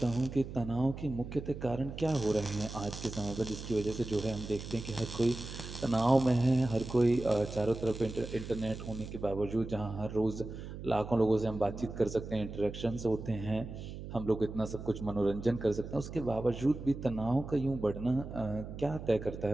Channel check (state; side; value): noise; right; hum, 10 dB below the sound